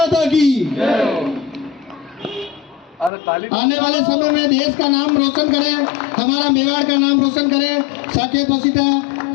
की। आने वाले समय में देश का नाम रोशन करें, हमारा मेवाड़ का नाम रोशन करें। साकेत वसीता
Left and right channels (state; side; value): drops out; right; at 3.1 s